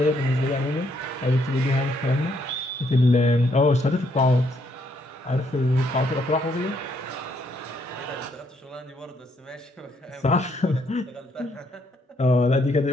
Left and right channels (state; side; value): normal; both; correlation 0.72